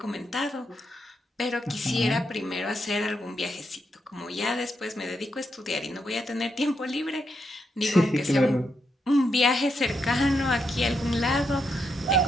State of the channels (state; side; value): normal; both; correlation 0.81